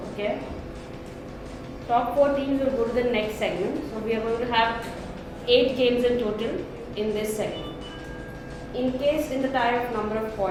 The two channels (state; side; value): identical; both; correlation 1.00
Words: Okay? Top 4 teams will go to the next segment. So we are going to have 8 games in total in this segment. In case in the tie of number of